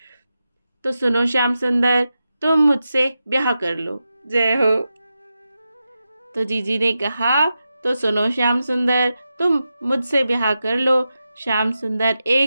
तो सुनो श्याम सुंदर, तुम मुझसे ब्याह कर लो। जय हो। तो जीजी ने कहा, तो सुनो श्याम सुंदर, तुम मुझसे ब्याह कर लो। श्याम सुंदर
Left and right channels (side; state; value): both; inverted; correlation -0.90